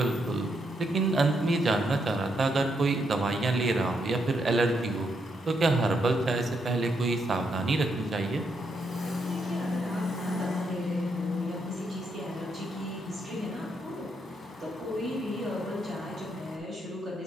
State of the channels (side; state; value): both; normal; correlation 0.78